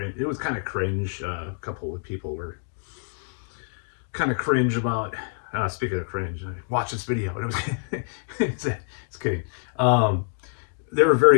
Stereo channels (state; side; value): silent; right; digital silence